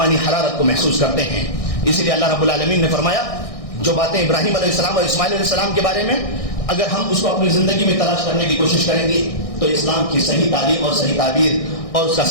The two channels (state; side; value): late; right; 1.6 ms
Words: حرارت کو محسوس کرتے ہیں. اس لیے اللہ رب العالمین نے فرمایا جو باتیں ابراہیم علیہ السلام اور اسماعیل علیہ السلام کے بارے میں اگر ہم اس کو اپنی زندگی میں تلاش کرنے کی کوشش کریں گے تو اسلام کی صحیح تعلیم اور صحیح تعبیر اور اس کا